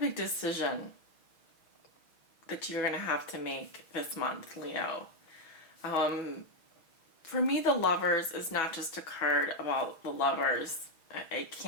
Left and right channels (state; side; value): late; right; 6.3 ms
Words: decision that you're going to have to make this month, Leo. For me, the Lovers is not just a card about the lovers. It